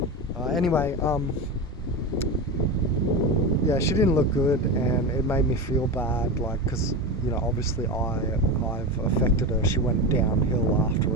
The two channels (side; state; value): both; normal; correlation 0.21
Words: Anyway, yeah, she didn't look good, and it made me feel bad, like, because, you know, obviously I've affected her. She went downhill